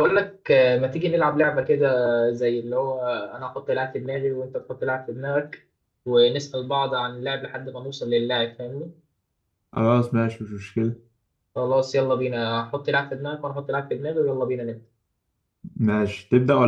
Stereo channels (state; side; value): identical; both; correlation 1.00